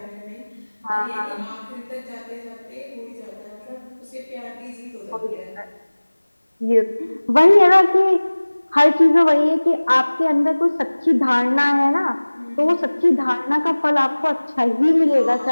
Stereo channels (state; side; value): inverted; both; correlation -1.00